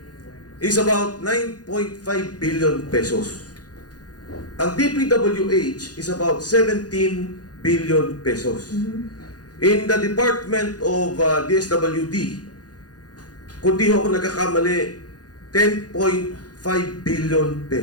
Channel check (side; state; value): right; late; 0.69 ms